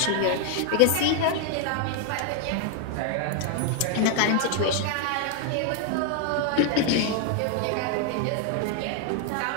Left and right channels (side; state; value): both; different; correlation 0.00